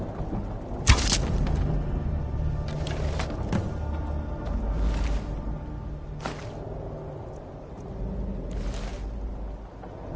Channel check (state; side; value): identical; both; correlation 1.00